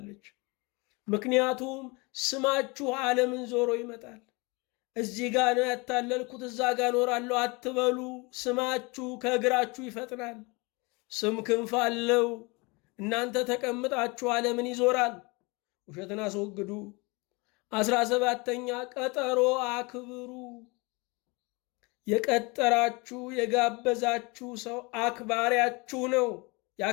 ምክንያቱም ስማችሁ ዓለምን ዞሮ ይመጣል። እዚህ ጋ ነው ያታለልኩት እዛ ጋ ኖራለሁ አትበሉ። ስማችሁ ከእግራችሁ ይፈጥናል። ስም ክንፍ አለው። እናንተ ተቀምጣችሁ ዓለምን ይዞራል። ውሸትን አስወግዱ። 17ኛ ቀጠሮ አክብሩ። የቀጠራችሁ የጋበዛችሁ ሰው አክባሪያችሁ ነው።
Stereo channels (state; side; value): quieter; right; 27.3 dB